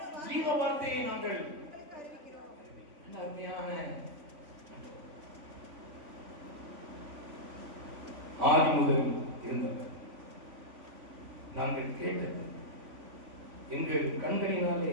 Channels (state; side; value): late; left; 3.5 ms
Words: ஜீவ வார்த்தையை நாங்கள். அருமையான ஆதி முதல் இருந்தவர், நாங்கள் கேட்டது, எங்கள் கண்களினாலே